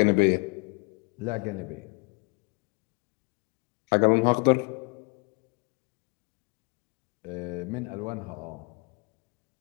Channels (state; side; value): quieter; right; 33.5 dB